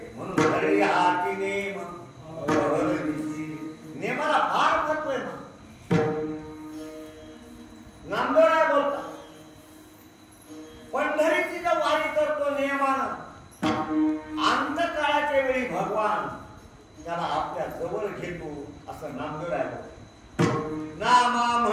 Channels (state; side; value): identical; both; correlation 1.00